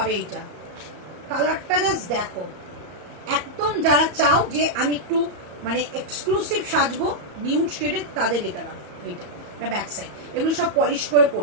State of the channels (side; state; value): left; late; 34 ms